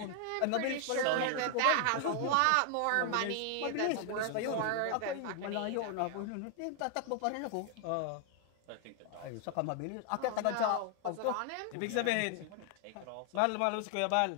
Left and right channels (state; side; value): different; both; correlation 0.00